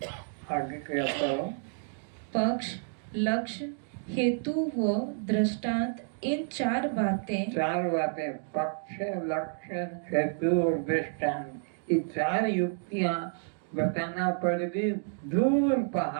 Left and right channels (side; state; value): left; silent; digital silence